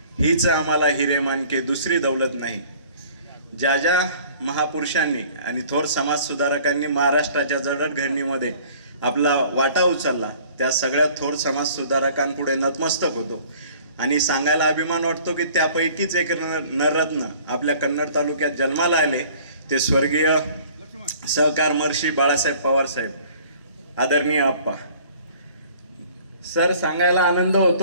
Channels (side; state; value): both; inverted; correlation -0.51